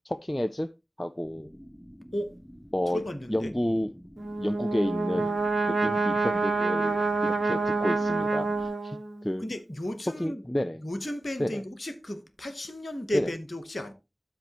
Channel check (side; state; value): both; normal; correlation 0.92